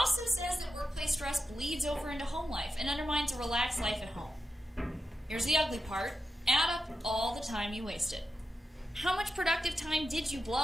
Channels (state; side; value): normal; both; correlation 0.89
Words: says that workplace stress bleeds over into home life and undermines a relaxed life at home. Here's the ugly part. Add up all the time you wasted. How much productive time did you